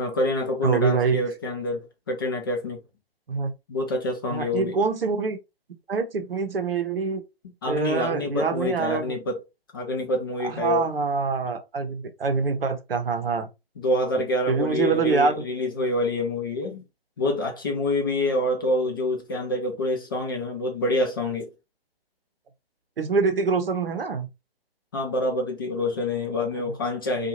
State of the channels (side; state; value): both; normal; correlation 0.17